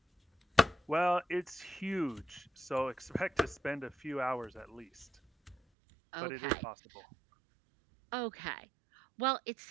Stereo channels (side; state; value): left; drops out; at 5.6 s